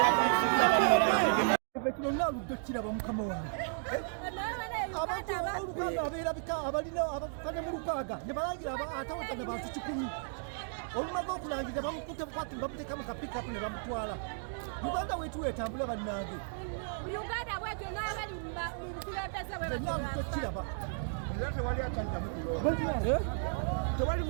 kino naaludde kiraba mukama wange abantu olukaaga abeerabika abalina abakane mu lukaaga ne balangira atawatana bantu 100 olumaze okulangira bamukutte bukwati bamuteeka mu kapikapu ne bamutwala. Uganda wetu etambula bannange Uganda bwetu n'abali mu bukulembeze bwe naaludde kiraba tewali akyaddamu kulonda. Tewali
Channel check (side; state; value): left; silent; digital silence